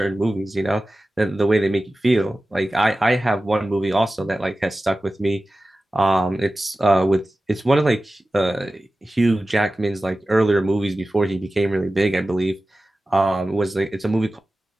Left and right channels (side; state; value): both; normal; correlation 0.95